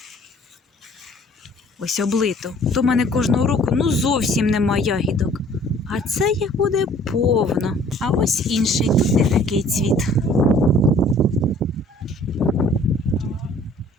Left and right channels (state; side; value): normal; both; correlation 0.54